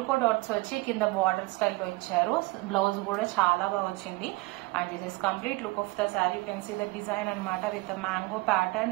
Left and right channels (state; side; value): quieter; left; 23.3 dB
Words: డాట్స్ వచ్చి కింద బార్డర్ స్టైల్లో ఇచ్చారు. బ్లౌజ్ కూడా చాలా బాగా వచ్చింది. And this is complete look of the sari. You can see the design అనమాట with mango